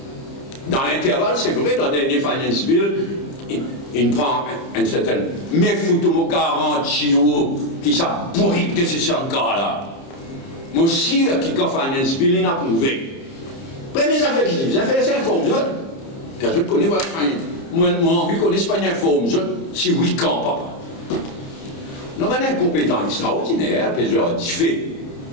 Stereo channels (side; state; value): right; late; 30 ms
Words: Dans l'intervalle, c'est vrai, dans le dernier Finance Bill, il prend une certaine. Mais foutez-moi garantie qui s'abourrite de ces cas-là. Moi aussi, qui quand Finance Bill, il a prouvé. Première affaire qui dit, vous avez fait ça, informe je ne connais pas. Moi, envie qu'on n'ait pas une informe, si oui, quand, papa. Nous avons un compétent extraordinaire, plusieurs diffés.